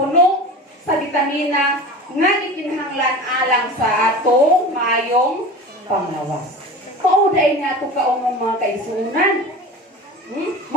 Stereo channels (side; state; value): both; normal; correlation 0.33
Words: sa bitamina, nga gikinahanglan alang sa atong maayong panglawas. Pauday nga ito kaong mga kaisunan.